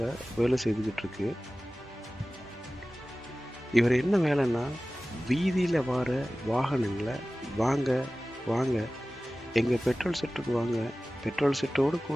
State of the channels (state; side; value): normal; both; correlation 0.97